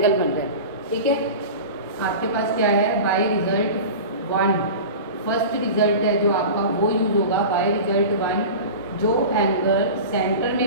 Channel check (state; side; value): inverted; both; correlation -0.33